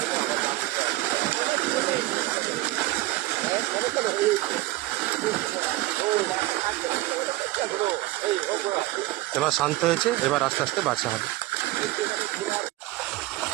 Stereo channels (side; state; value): left; quieter; 18.6 dB